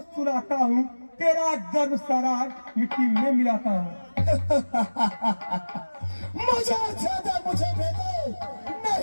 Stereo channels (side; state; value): both; inverted; correlation -1.00